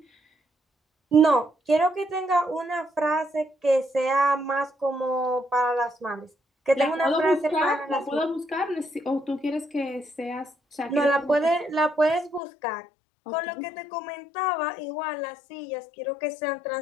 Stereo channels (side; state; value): right; drops out; at 12.4 s